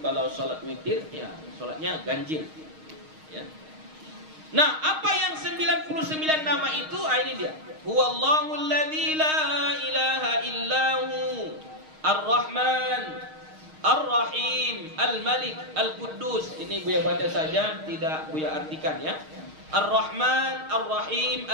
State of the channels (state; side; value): late; left; 6.4 ms